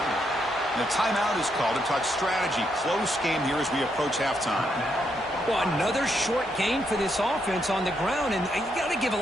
And a timeout is called to talk strategy. Close game here as we approach halftime. Well, another short game for this offense on the ground, and you got to give a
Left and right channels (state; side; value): normal; both; correlation 0.78